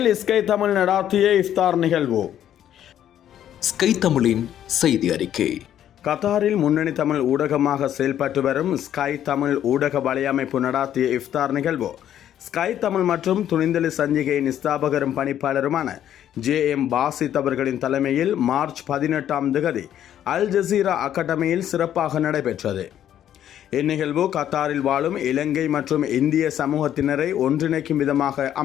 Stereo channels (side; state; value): right; quieter; 10.8 dB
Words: ஸ்கை தமிழ் நடாத்திய இஃப்தார் நிகழ்வு. ஸ்கை தமிழின் செய்தி அறிக்கை. கத்தாரில் முன்னணி தமிழ் ஊடகமாக செயல்பட்டு வரும் ஸ்கை தமிழ் ஊடக வலையமைப்பு நடாத்திய இஃப்தார் நிகழ்வு ஸ்கை தமிழ் மற்றும் துணிந்தலி சஞ்சிகையின் ஸ்தாபகரும் பணிப்பாளருமான JM பாசித் அவர்களின் தலைமையில் மார்ச் 18 அல் ஜசீரா அகாடமியில் சிறப்பாக நடைபெற்றது. இந்நிகழ்வு கத்தாரில் வாழும் இலங்கை மற்றும் இந்திய சமூகத்தினரை ஒன்றிணைக்கும் விதமாக